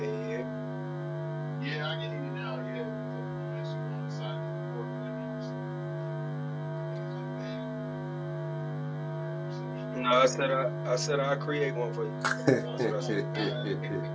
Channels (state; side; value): identical; both; correlation 1.00